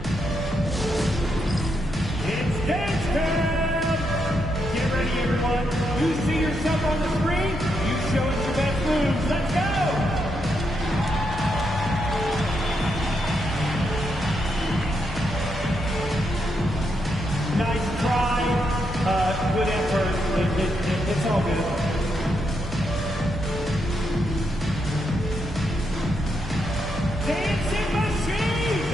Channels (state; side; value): normal; both; correlation 0.81